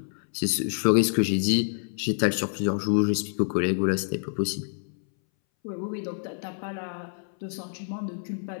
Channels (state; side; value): silent; right; 60 dB below the other